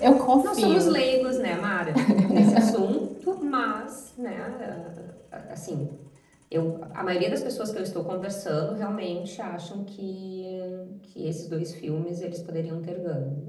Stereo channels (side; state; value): both; identical; correlation 1.00